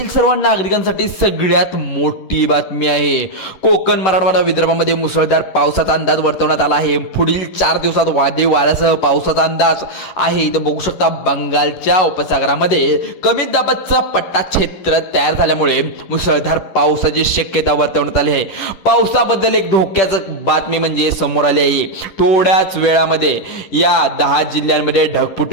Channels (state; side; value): late; right; 11 ms